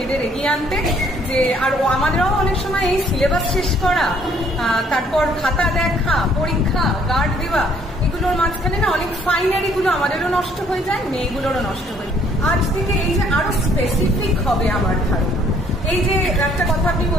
এগিয়ে আনতে, যে আর আমাদেরও অনেক সময় এই সিলেবাস শেষ করা, তারপর খাতা দেখা, পরীক্ষা, গার্ড দেওয়া, এগুলোর মাঝখানে না অনেক ফাইনারি গুলো আমাদেরও নষ্ট হয়ে যায়, মেয়েগুলোরও নষ্ট হয়ে যায়। আজ থেকে এই যে আরো স্পেসিফিক হবে আমার ধারণা। এই যে একটা কথা আপনি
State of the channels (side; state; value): both; normal; correlation 0.63